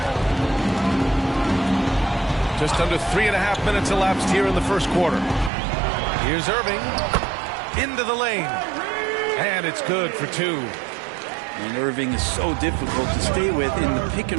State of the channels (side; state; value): left; drops out; at 5.5 s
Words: Just under 3.5 minutes elapsed here in the first quarter. Here's Irving. Into the lane. And it's good for 2. And Irving is so difficult to stay with in the pick